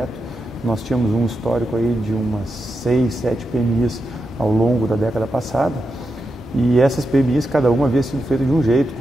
Nós tínhamos um histórico aí de umas 6, 7 PMIs ao longo da década passada e essas PMIs, cada uma havia sido feita de um jeito,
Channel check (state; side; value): normal; both; correlation 0.87